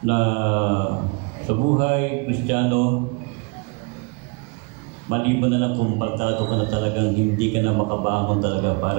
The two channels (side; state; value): left; quieter; 32.4 dB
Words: na sa buhay Kristiyano, maliban na lang kung pagtato ka na talagang hindi ka na makabangon talaga